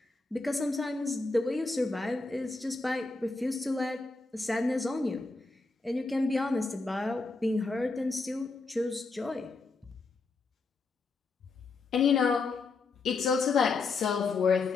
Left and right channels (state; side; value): quieter; right; 3.9 dB